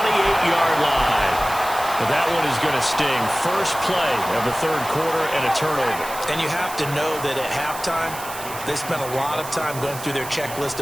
line. But that one is going to sting. First play of the third quarter and a turnover. And you have to know that at halftime, they spent a lot of time going through their checklist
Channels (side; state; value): right; noise; hiss, 12 dB below the sound